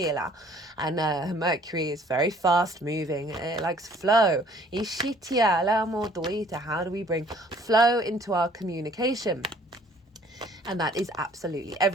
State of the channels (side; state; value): both; normal; correlation 0.57